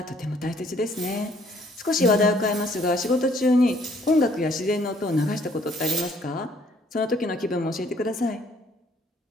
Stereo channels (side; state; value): both; normal; correlation 0.63